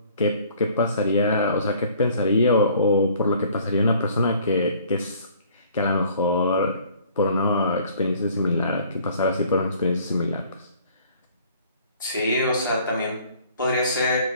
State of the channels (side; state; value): both; inverted; correlation -0.56